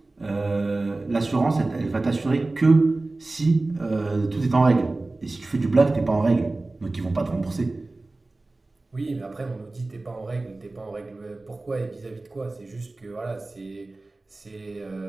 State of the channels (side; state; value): left; quieter; 3.1 dB